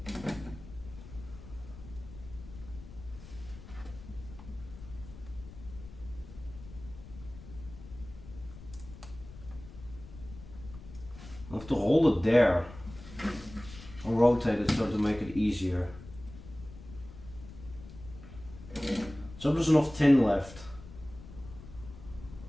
I have to hold it there. I'll rotate it so to make it easier. So there's enough tin left.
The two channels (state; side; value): noise; left; rumble, 15 dB below the sound